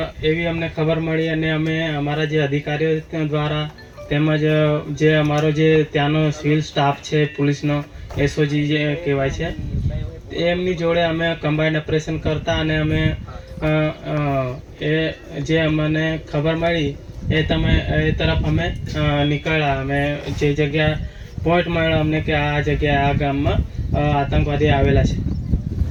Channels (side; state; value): both; identical; correlation 1.00